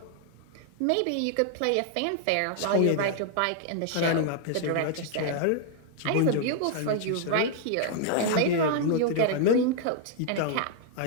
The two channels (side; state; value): both; different; correlation 0.00